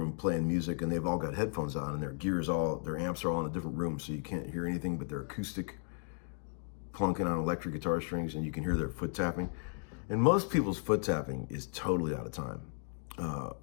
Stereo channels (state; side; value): silent; right; 54 dB below the other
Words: playing music, and they've all got headphones on, and their amps are all in a different room, so you can't hear anything but their acoustic plunking on electric guitar strings, and you can hear their foot tapping. And most people's foot tapping is totally out of time.